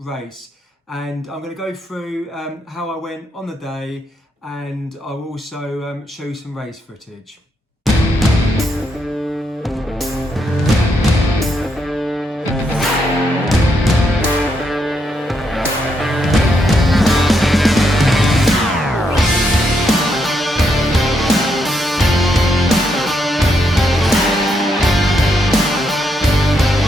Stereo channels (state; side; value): normal; both; correlation 0.78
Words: and I'm going to go through how I went on the day, and I'll also show you some race footage.